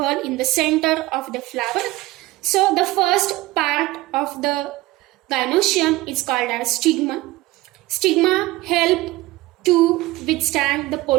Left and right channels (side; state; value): left; quieter; 18.7 dB